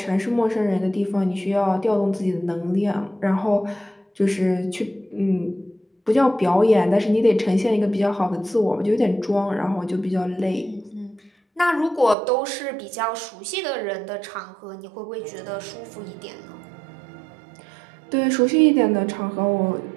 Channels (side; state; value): left; drops out; at 12.2 s